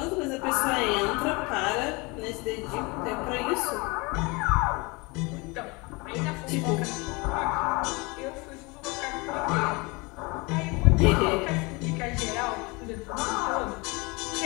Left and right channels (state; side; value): quieter; right; 26.8 dB